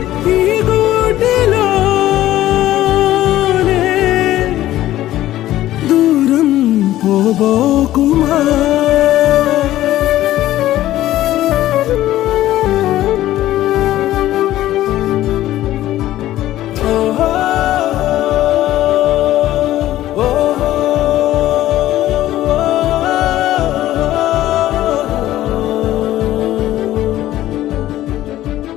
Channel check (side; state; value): right; quieter; 14.3 dB